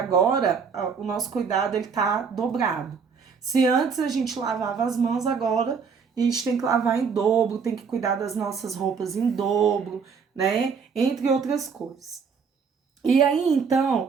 o nosso cuidado ele está dobrado. Se antes a gente lavava as mãos, agora a gente tem que lavar em dobro, tem que cuidar das nossas roupas em dobro, né? Entre outras coisas. E aí,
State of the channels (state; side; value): quieter; left; 5.9 dB